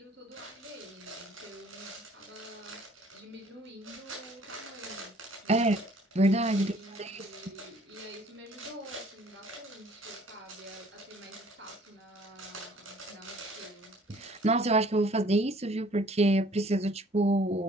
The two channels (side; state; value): both; normal; correlation 0.56